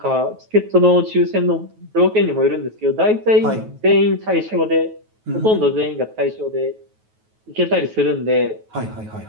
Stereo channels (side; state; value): left; late; 9.3 ms